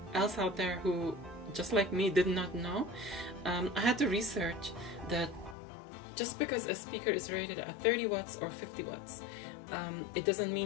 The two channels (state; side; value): drops out; right; at 5.6 s